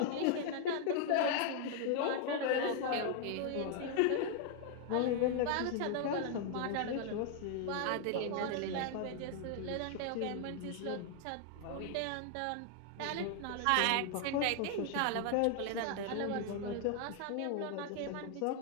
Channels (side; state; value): both; different; correlation 0.00